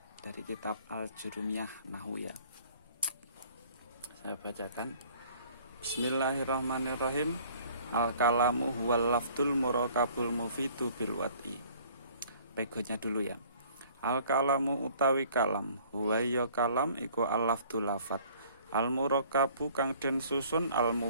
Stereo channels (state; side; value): inverted; both; correlation -0.55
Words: dari kitab Al-Jurumiyah Nahwu ya. Saya bacakan. Bismillahirrahmanirrahim. Al-kalamu huwal lafdul murakabul mufidu bil wat'i. Pegonya dulu ya. Al-kalamu utawi kalam, huwa ya kalam iku al-lafdul lafat. Al-murakabu kang den susun